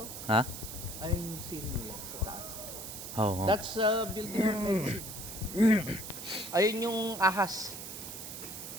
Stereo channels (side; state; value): right; noise; hiss, 9 dB below the sound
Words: Ha? Ayan yung seal nila sa taas. Oo. That's building of medicine. Ayun yung ahas.